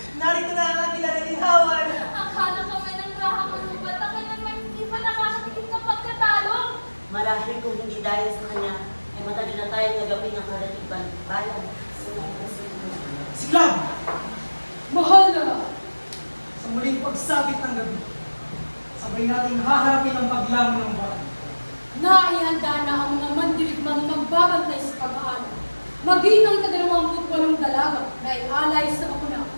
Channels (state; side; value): inverted; both; correlation -1.00